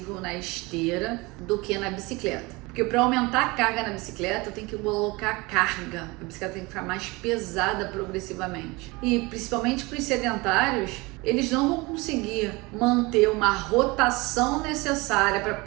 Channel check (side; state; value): left; quieter; 24.1 dB